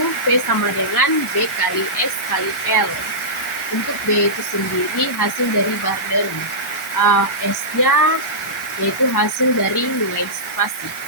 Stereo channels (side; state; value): both; normal; correlation -0.15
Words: P sama dengan B kali S kali L. Untuk B itu sendiri hasil dari Barden. S-nya yaitu hasil dari nilai spasi.